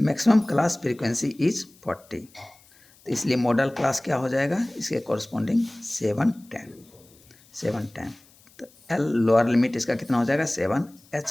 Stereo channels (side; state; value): left; noise; hiss, 28 dB below the sound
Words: क्लास फ्रीक्वेंसी इज 40, तो इसलिए मॉडल क्लास क्या हो जाएगा इसके कॉरस्पॉन्डिंग 710। तो L लोअर लिमिट इसका कितना हो जाएगा 7,